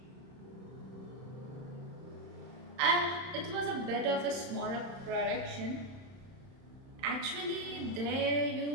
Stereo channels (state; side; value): late; left; 31 ms